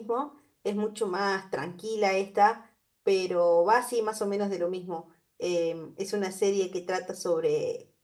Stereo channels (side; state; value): both; identical; correlation 1.00